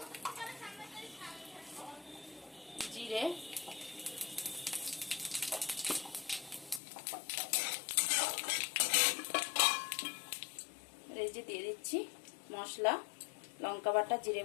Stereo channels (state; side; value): drops out; right; at 6.8 s